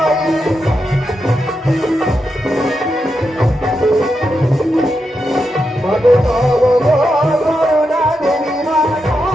মাগো তব করুণা দেবী মা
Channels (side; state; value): both; normal; correlation 0.86